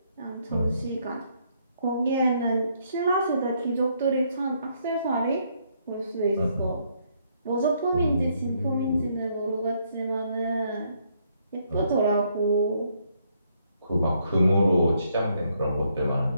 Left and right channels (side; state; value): both; inverted; correlation -0.72